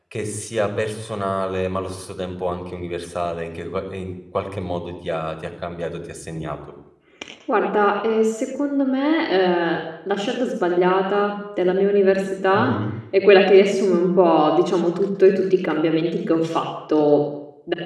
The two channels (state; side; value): identical; both; correlation 1.00